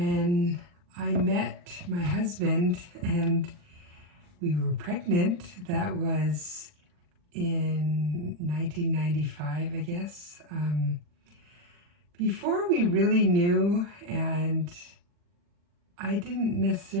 I met my husband and we were pregnant, that was in 1995, I guess. Before we really knew, and I didn't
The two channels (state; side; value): late; left; 40 ms